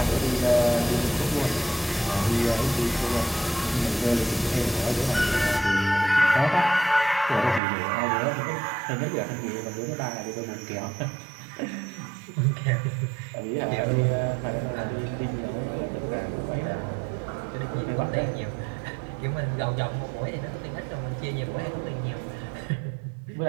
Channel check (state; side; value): drops out; left; at 7.6 s